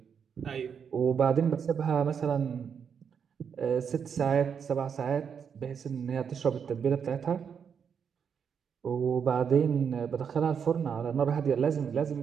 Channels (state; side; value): quieter; left; 7.1 dB